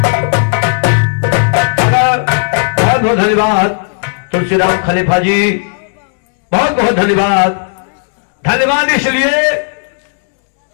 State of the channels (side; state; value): right; silent; digital silence